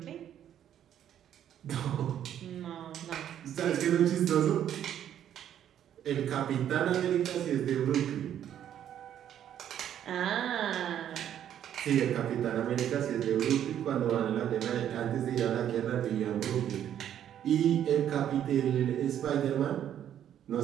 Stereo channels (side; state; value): left; quieter; 10.3 dB